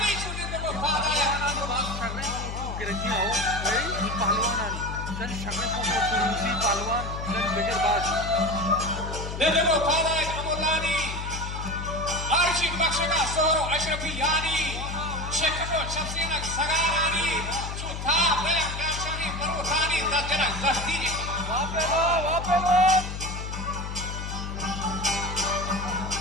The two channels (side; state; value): left; noise; hum, 6 dB below the sound